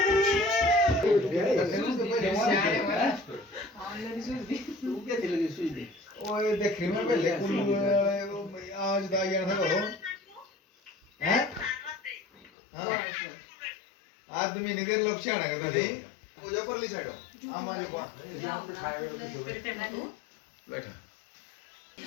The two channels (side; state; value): right; drops out; at 12.5 s